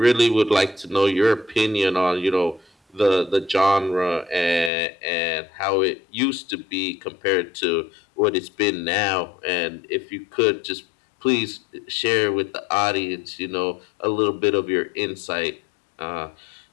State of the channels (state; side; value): drops out; right; at 4.7 s